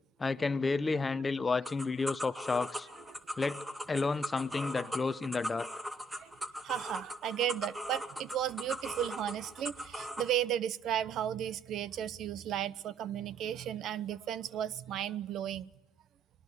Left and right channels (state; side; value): normal; both; correlation 0.70